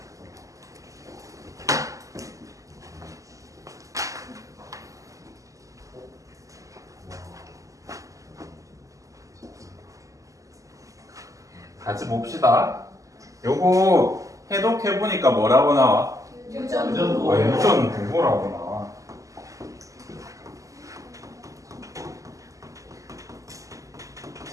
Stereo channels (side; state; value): left; late; 0.16 ms